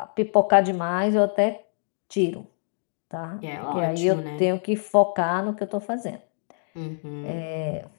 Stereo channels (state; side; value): silent; right; digital silence